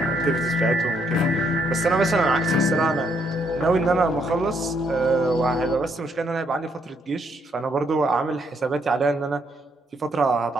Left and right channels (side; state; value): both; normal; correlation 0.72